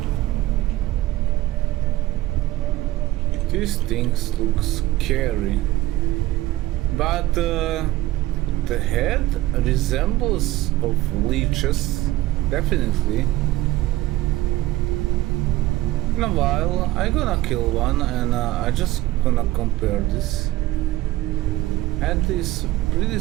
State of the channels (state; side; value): quieter; left; 16.7 dB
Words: These things look scary. But the head resembles of leeches, definitely. In a while, I gonna kill one and I just gonna compare this. Head is pretty